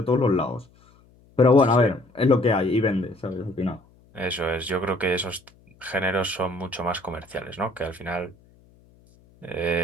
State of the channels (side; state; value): left; noise; hum, 29 dB below the sound